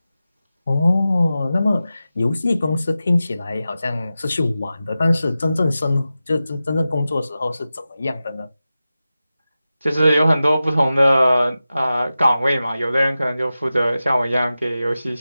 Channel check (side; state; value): both; inverted; correlation -0.94